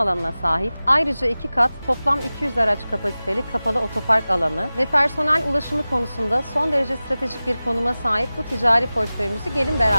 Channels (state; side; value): inverted; both; correlation -0.97